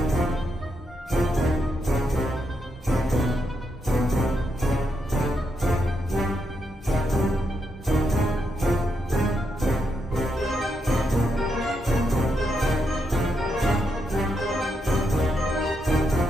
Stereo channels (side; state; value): both; normal; correlation 0.82